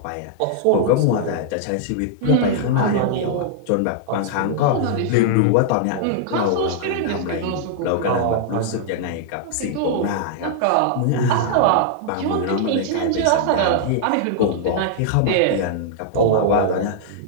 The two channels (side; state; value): both; different; correlation -0.01